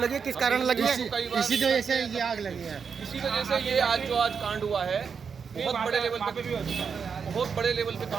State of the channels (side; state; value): left; quieter; 6.2 dB